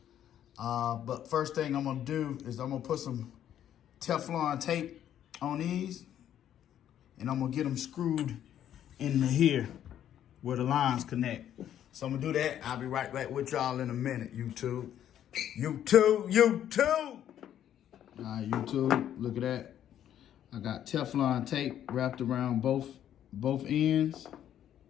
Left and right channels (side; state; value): right; quieter; 10.6 dB